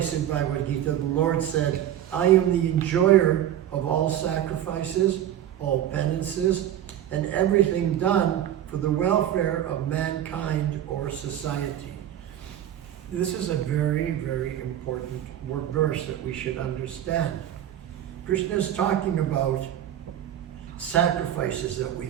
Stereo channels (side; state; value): left; quieter; 11.2 dB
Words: in Bhagavad Gita, the Lord said, I am the enjoyer of all sacrifices, all penances, and everything done for the welfare of mankind or society. This is a very, very important verse that we should understand. Krishna is talking about sacrifices that we